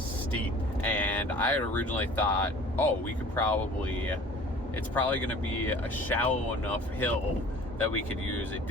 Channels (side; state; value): both; normal; correlation 0.46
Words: steep. And I had originally thought, oh, it's probably going to be a shallow enough hill that we could use a